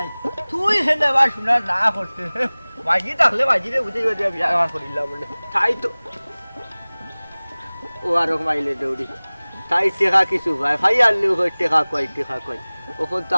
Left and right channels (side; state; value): both; inverted; correlation -1.00